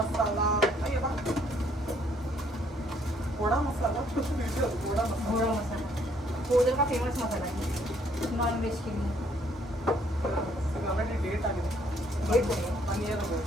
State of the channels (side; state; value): both; normal; correlation 0.66